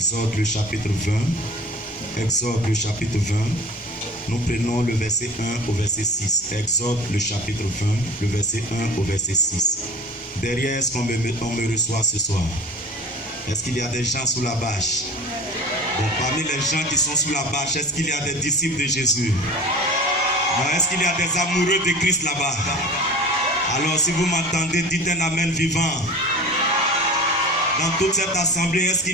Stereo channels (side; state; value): both; normal; correlation 0.39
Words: le chapitre 20. Exode, le chapitre 20. Nous prenons le verset 1 au verset 6. Exode, le chapitre 20, le verset 1 au verset 6. Derrière, est-ce qu'on me reçoit ce soir? Est-ce qu'il y a des gens sous la bâche? Bon, parmi les gens qui sont sous la bâche, est-ce qu'il y a des disciples de Jésus? Est-ce qu'il y a des amoureux de Christ là-bas? Alors, si vous m'entendez, dites un Amen vivant. Dans toute cette assemblée, est-ce